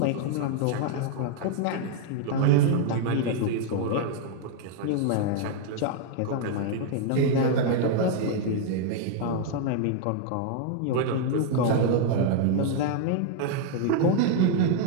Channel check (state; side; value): different; both; correlation 0.00